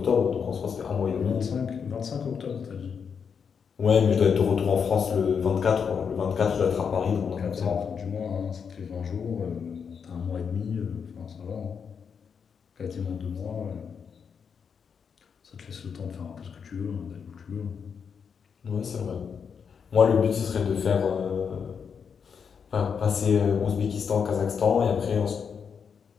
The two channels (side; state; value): right; quieter; 6.6 dB